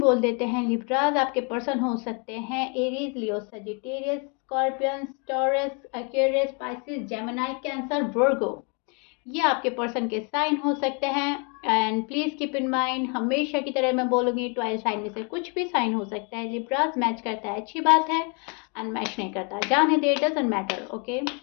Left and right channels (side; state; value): right; quieter; 35.2 dB